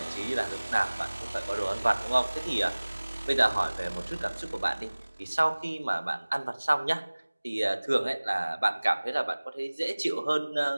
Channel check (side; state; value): both; inverted; correlation -1.00